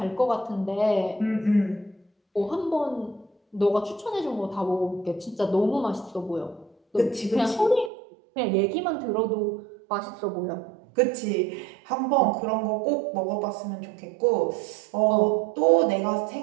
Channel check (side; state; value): left; drops out; at 7.9 s